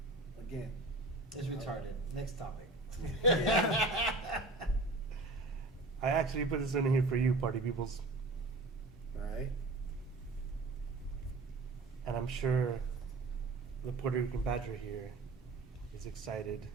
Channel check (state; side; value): quieter; left; 3.0 dB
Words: again, It's retarded. Next topic. I actually put this in here for you, party peoples, all right. and I'm sure the Puerto Rican Badger here is excited.